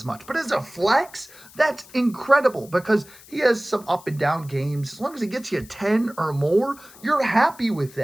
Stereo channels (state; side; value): noise; left; hiss, 22 dB below the sound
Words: much. But as a flex, that's incredible because he has some up and down games. As long as he gets you 10 or more, you're happy with